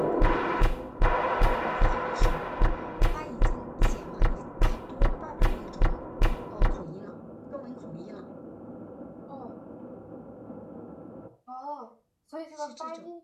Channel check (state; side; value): identical; both; correlation 1.00